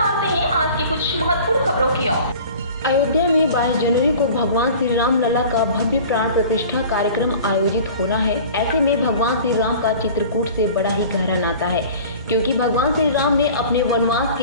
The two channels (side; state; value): both; inverted; correlation -0.43